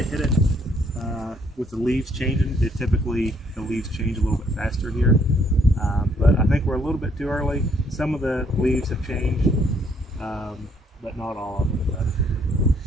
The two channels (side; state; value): both; normal; correlation 0.67